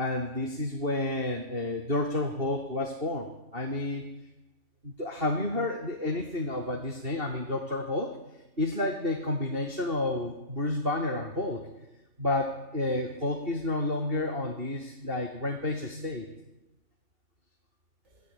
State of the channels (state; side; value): late; left; 2.8 ms